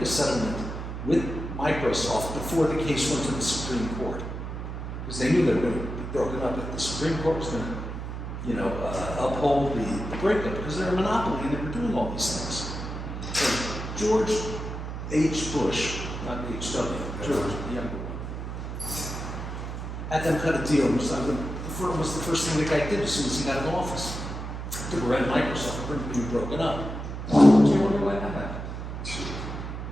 a settlement with Microsoft before the case went to the Supreme Court. Because they knew they were going to be broken up, if the Supreme Court was going to, uphold the breakup, because they're a monopoly and they were doing all these things. So George H. Bush, not H.W., George, the younger one, had them cut a deal. The firm was the first thing the guy did as soon as he got in office. Took around Microsoft, being broken up. Do you wonder why that happened?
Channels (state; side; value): noise; right; hum, 6 dB below the sound